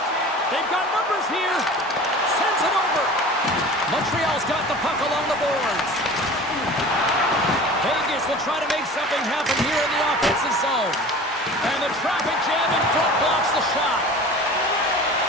They've got numbers here. Sends it over. Montreal's got the puck along the boards. Vegas will try to make something happen here in the offensive zone. And the traffic jam in front blocks the shot.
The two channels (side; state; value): both; normal; correlation 0.39